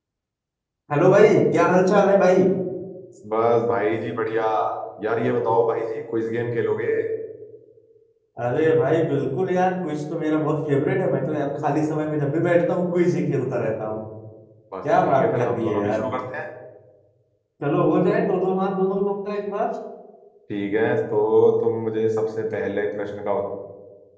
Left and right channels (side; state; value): both; identical; correlation 1.00